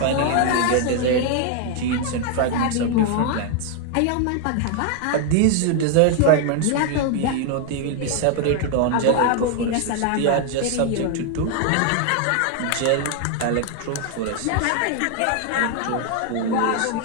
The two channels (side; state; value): both; different; correlation 0.00